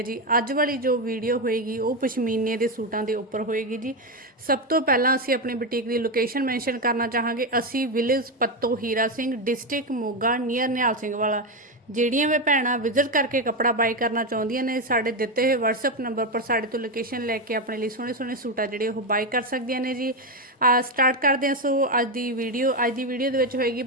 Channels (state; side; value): normal; both; correlation 0.10